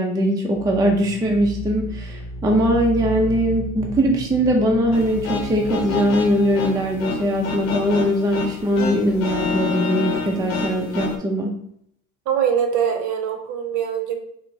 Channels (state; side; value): normal; both; correlation 0.55